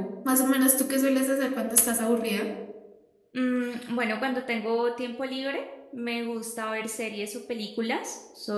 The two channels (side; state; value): both; identical; correlation 1.00